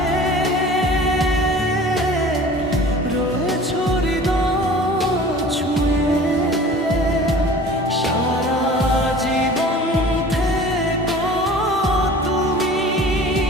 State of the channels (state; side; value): normal; both; correlation 0.43